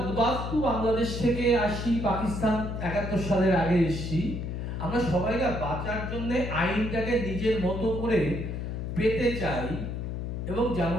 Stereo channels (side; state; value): left; noise; hum, 4 dB below the sound